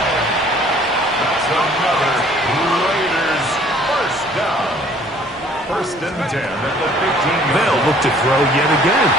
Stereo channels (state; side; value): normal; both; correlation 0.56